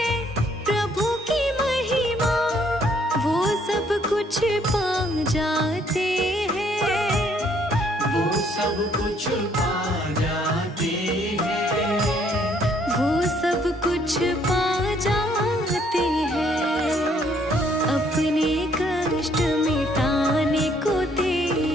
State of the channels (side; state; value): both; normal; correlation 0.66